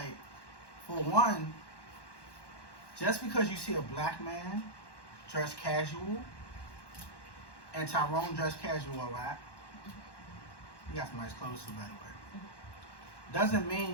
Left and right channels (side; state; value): right; late; 1.1 ms